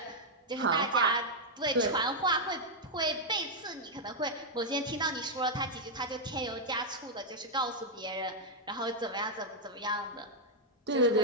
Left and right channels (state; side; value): normal; both; correlation -0.02